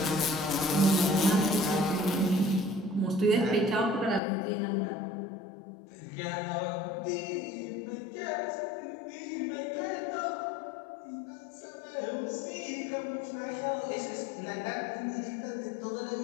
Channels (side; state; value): right; drops out; at 4.2 s